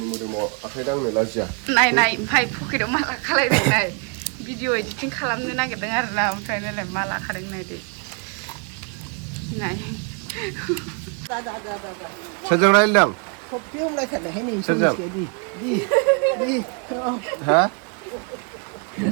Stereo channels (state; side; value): quieter; left; 37.7 dB